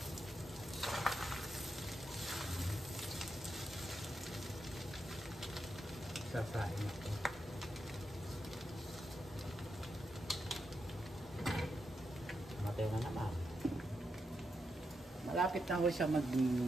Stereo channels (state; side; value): normal; both; correlation 0.85